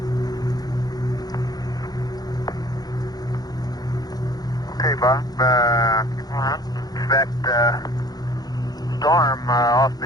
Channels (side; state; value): right; late; 0.19 ms